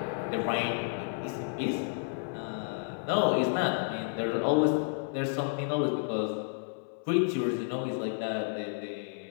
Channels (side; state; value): right; silent; 57 dB below the other